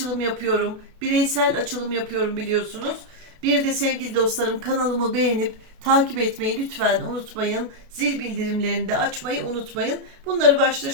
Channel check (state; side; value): late; left; 32 ms